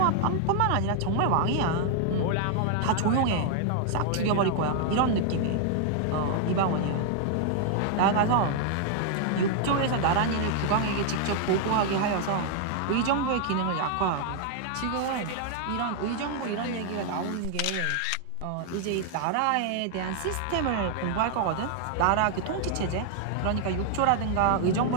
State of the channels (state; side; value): different; both; correlation 0.00